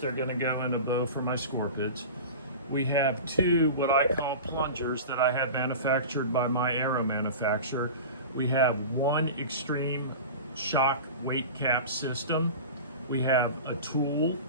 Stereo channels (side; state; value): both; inverted; correlation -0.32